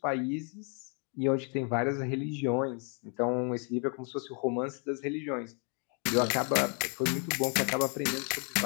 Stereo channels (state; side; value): quieter; right; 39.3 dB